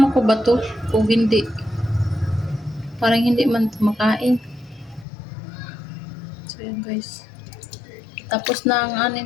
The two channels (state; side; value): drops out; right; at 5.1 s